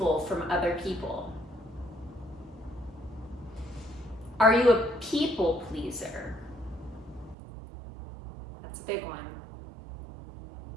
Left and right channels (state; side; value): drops out; left; at 7.4 s